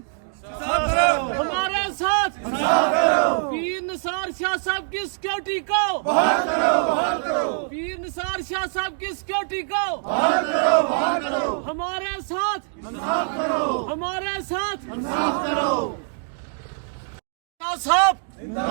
हमारे साथ पीर निसार शाह साहब की सिक्योरिटी को बहाल करो। पीर निसार शाह साहब की सिक्योरिटी को बहाल करो। हमारे साथ हमारे साथ साहब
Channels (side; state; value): left; silent; digital silence